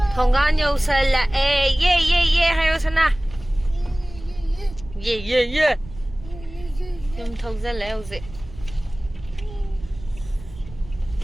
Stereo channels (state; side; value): noise; right; rumble, 16 dB below the sound